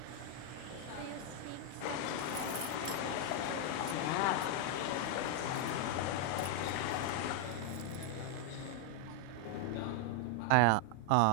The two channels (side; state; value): both; different; correlation 0.00